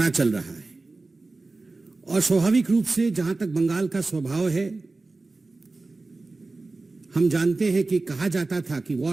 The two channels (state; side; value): quieter; left; 3.4 dB